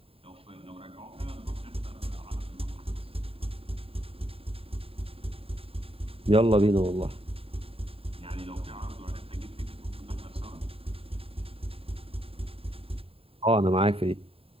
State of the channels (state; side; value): late; left; 0.27 ms